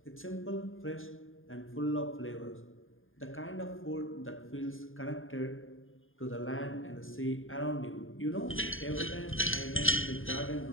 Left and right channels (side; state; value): right; late; 0.59 ms